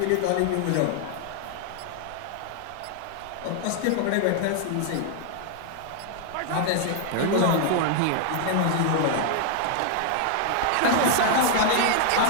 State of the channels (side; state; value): both; different; correlation 0.00